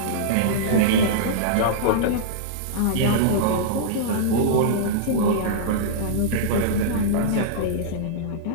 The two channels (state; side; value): different; both; correlation -0.03